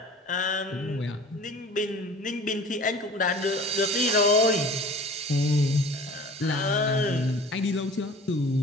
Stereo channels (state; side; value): normal; both; correlation 0.43